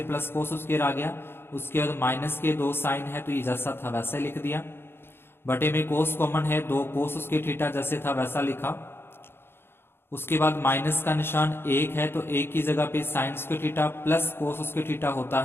plus cos square आ गया। उसके बाद माइनस के 2 साइन है तो ये जैसा था वैसा लिख दिया। बटे में कोस कॉमन है, 2 कोस स्क्वायर थीटा जैसे था वैसा लिखा। उसके बाद माइनस का निशान 1 है तो 1 की जगह पे sine square theta plus cos square theta होता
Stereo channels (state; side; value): late; right; 0.11 ms